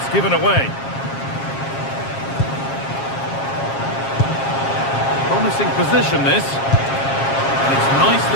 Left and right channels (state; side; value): late; right; 7.4 ms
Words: given away. Promising position, this. And it's